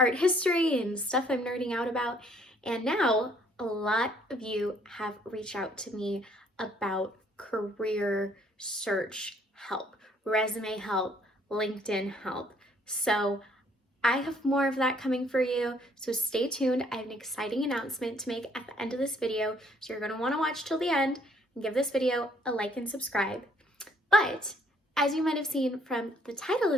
history and stuff I'm nerding out about. And now a lot of you have reached out to me about career search help, resume help, LinkedIn help. So I have more of that coming for you, so stay tuned. I have an exciting announcement to make at the end of this video, so you're going to want to watch till the end and give this video a like and subscribe. But as you might have seen from the title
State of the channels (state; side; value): normal; both; correlation 0.64